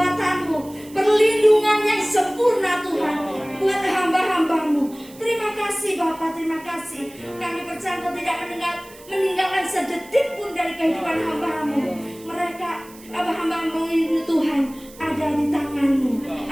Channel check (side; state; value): right; noise; hiss, 22 dB below the sound